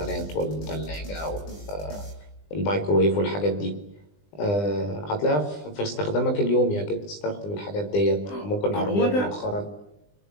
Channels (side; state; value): right; late; 20 ms